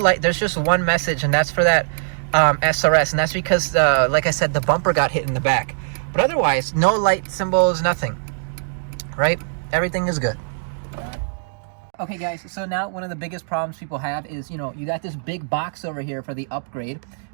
There's just one message, and that's for that SRS, and that's because, like I said, the bumper got hit in the back. But otherwise, no light symbols, nothing. Right? Everything is good. Okay, guys. So now one of the biggest problems people have is, you know, you got this big box over here for the upgrade.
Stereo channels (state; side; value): silent; left; digital silence